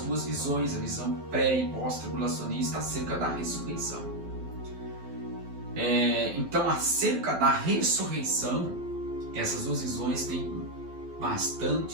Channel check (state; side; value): late; left; 12 ms